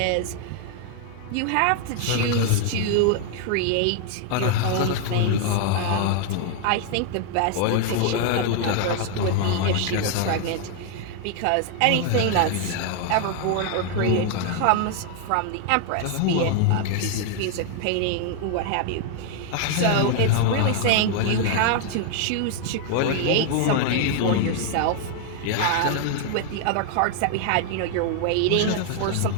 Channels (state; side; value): different; both; correlation 0.00